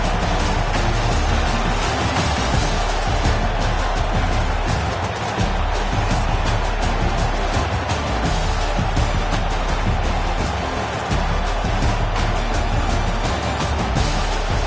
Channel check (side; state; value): both; identical; correlation 1.00